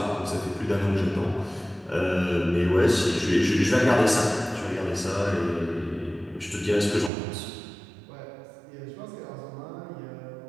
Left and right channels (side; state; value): left; drops out; at 7.1 s